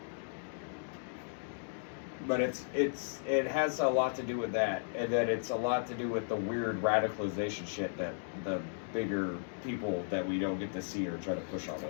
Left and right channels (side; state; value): right; silent; digital silence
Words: But it has a lot to do with that, and that it's a lot to do with the weird radicalization shit that the bigger people that we don't get to see or try to push on